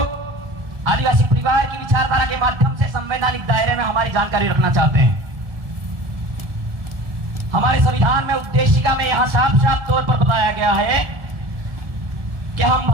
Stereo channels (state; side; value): late; left; 1.7 ms